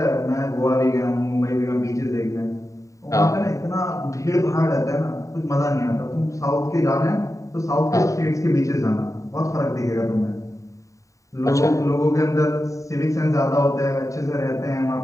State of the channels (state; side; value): late; right; 0.16 ms